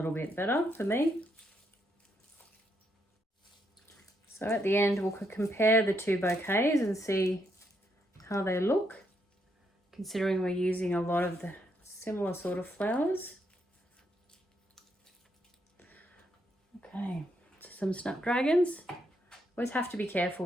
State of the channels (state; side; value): normal; both; correlation 0.77